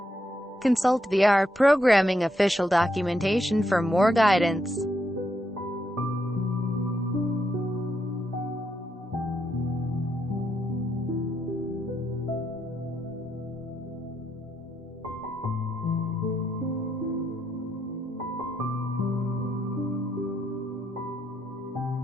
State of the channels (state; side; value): normal; both; correlation 0.79